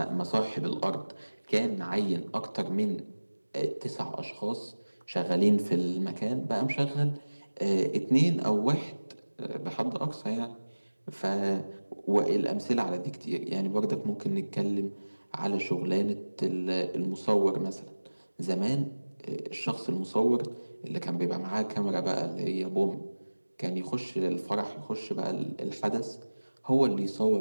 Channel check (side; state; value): both; inverted; correlation -1.00